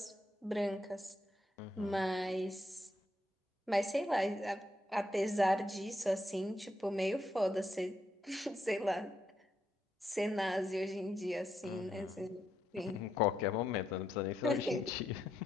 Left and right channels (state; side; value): normal; both; correlation 0.79